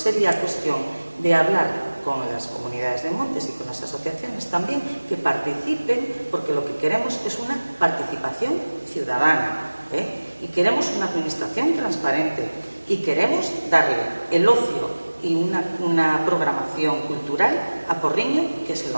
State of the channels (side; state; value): both; inverted; correlation -1.00